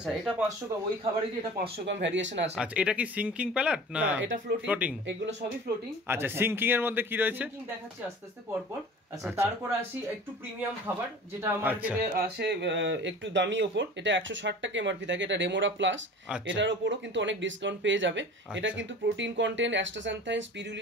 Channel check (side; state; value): both; normal; correlation 0.41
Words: এটা 500 গ্রাম, ওই খাবারেরই এটা 500 গ্রাম ভ্যারিয়েশন আছে। আচ্ছা, এটা কি সিঙ্কিং প্যালেট না এটা ফ্লোটিং? এগুলো সবই ফ্লোটিং। আচ্ছা, সিঙ্কিং এর মধ্যে কি রয়েছে সিঙ্কিং দেখাচ্ছি আস্তে আস্তে পর পর। আচ্ছা, তারপর আসি একটু প্রিমিয়াম খাবার যেটা মার্কেটে আসে একটু দামি ওপর। এটা 160 টাকা এমআরপি থাকে, এটা রেমোরা প্লাস। এটার উপরও কিন্তু অনেক ডিসকাউন্ট পেয়ে যাবে। এটা কিন্তু প্রোটিন কন্টেন্ট, অ্যাস্টাসান্থাইন,